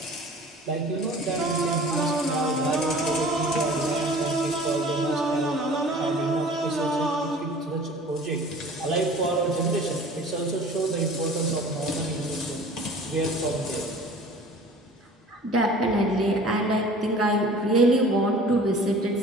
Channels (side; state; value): both; normal; correlation 0.45